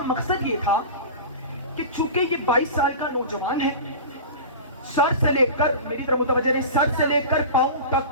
مقصد یہ تھا کہ چونکہ یہ 22 سال کا نوجوان ہے، سر سے لے کر، میری طرف متوجہ رہے، سر سے لے کر پاؤں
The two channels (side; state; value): both; inverted; correlation -0.32